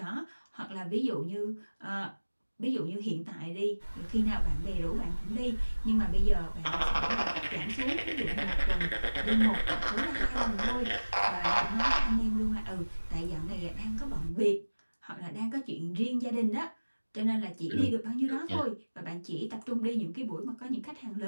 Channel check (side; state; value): both; inverted; correlation -1.00